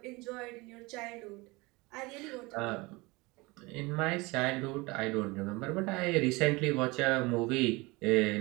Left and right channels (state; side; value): quieter; left; 24.0 dB